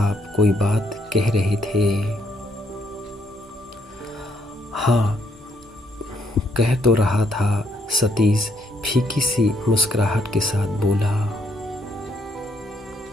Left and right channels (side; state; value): both; normal; correlation 0.72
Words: कोई बात कह रहे थे? हाँ, कह तो रहा था, सतीश फीकी सी मुस्कुराहट के साथ बोला।